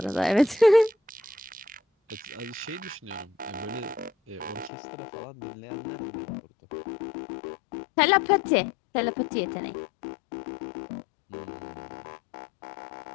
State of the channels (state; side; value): drops out; right; at 4.7 s